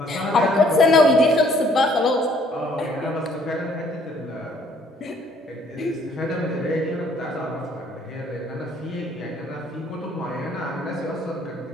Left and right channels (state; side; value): normal; both; correlation 0.62